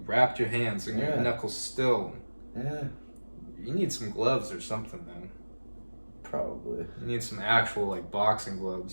wrapped your hands and your Yeah. knuckles still. Yeah. You need some gloves or something, then. Probably. You need some actual, like, boxing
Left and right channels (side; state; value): both; inverted; correlation -1.00